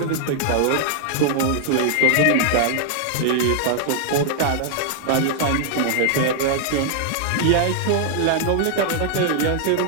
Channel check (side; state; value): both; different; correlation 0.00